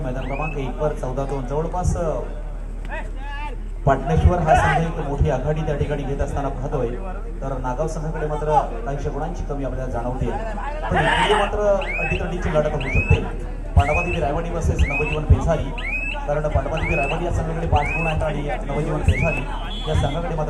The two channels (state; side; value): identical; both; correlation 1.00